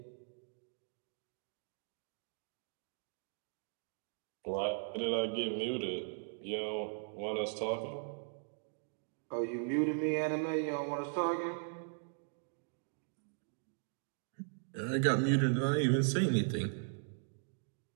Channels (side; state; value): left; silent; digital silence